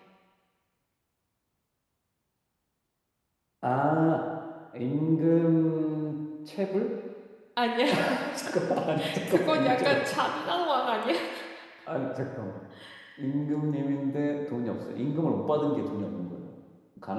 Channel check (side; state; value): both; identical; correlation 1.00